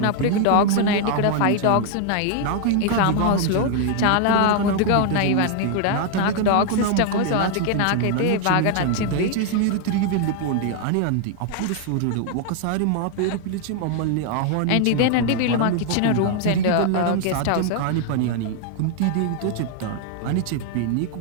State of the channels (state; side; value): different; both; correlation 0.00